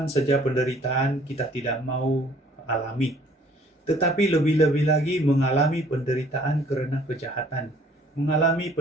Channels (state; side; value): normal; both; correlation 0.57